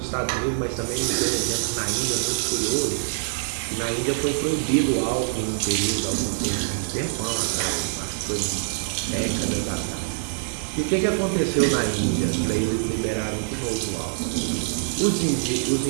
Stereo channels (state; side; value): silent; left; 62 dB below the other